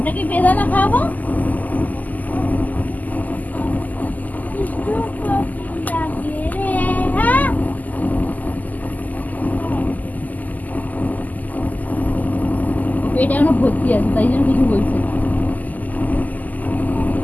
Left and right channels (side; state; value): right; late; 0.081 ms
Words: কি বেদানা খাবো? দুষ্টু কোকিল ডাকে রে। হ্যাঁ, এটা এখনো ভর্তি আছে, তাই জন্য কিছু বলছে না।